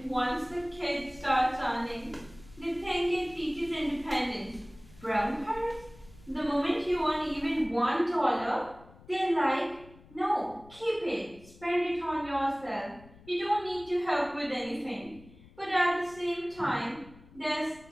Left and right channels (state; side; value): noise; left; rumble, 23 dB below the sound